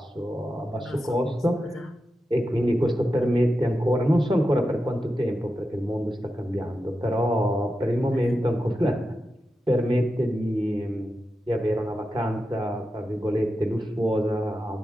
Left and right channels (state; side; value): normal; both; correlation 0.90